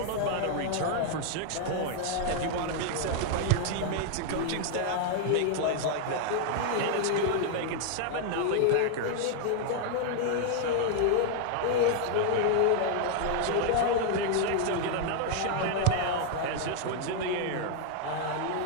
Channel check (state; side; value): different; both; correlation 0.00